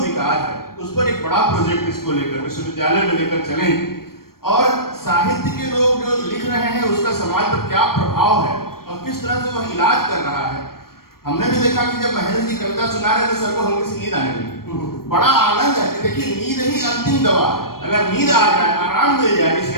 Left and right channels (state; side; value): late; right; 0.93 ms